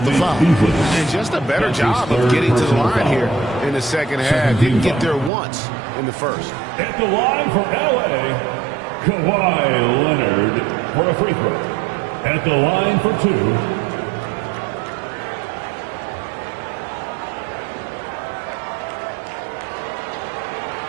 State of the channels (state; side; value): drops out; left; at 5.3 s